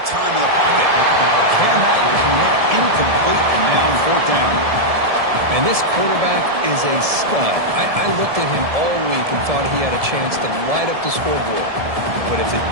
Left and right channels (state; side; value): late; left; 1.7 ms